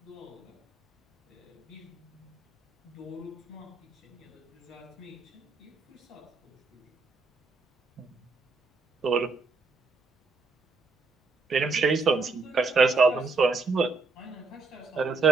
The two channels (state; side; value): quieter; left; 4.0 dB